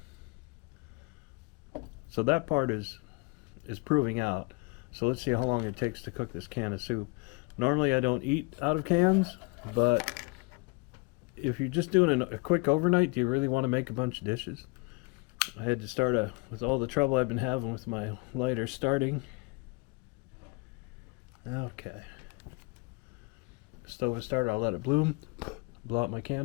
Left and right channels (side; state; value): right; quieter; 29.5 dB